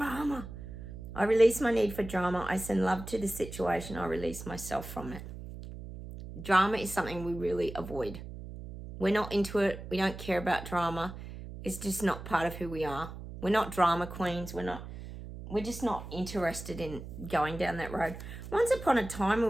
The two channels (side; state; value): right; noise; hum, 11 dB below the sound